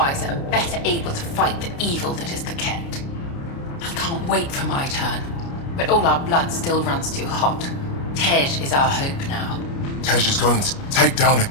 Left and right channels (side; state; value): right; late; 29 ms